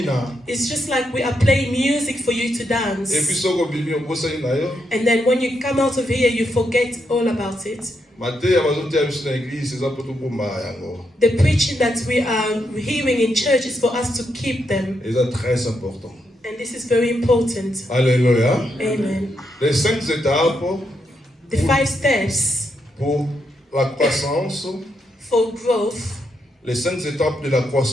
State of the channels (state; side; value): normal; both; correlation 0.80